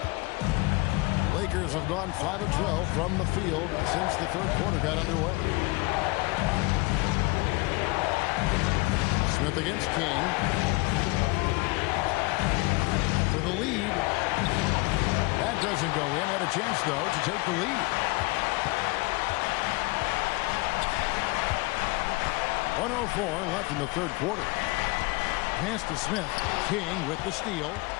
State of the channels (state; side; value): quieter; right; 24.1 dB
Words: Lakers have gone 5 of 12 from the field since the 3rd quarter got underway. Smith against King. For the lead. That doesn't go in. Had a chance, though, to take the lead. 1:04 left in the 3rd quarter. Pass to Smith. King with the steal.